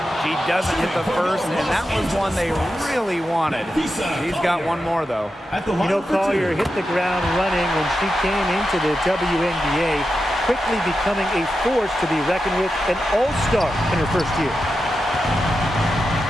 She doesn't hit the first, and that was one they really wanted. She's got one more, though. You know, Collier hit the ground running when she came into the WNBA, quickly becoming a force to be reckoned with, an all-star in her first year.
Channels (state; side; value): normal; both; correlation 0.89